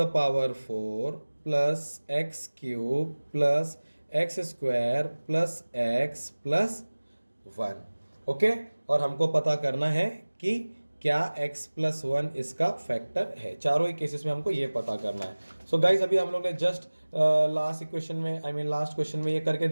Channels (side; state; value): both; inverted; correlation -1.00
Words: power 4 plus x cube plus x square plus x plus 1। Okay, और हमको पता करना है कि क्या x प्लस वन इसका फैक्टर है। चारों ही केसेस में हमको ये पता करना है। सो गाइज अभी हम लोग ने जस्ट लास्ट क्वेश्चन में ये करके